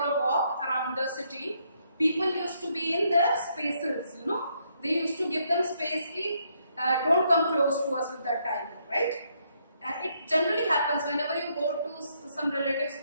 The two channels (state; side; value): inverted; both; correlation -0.73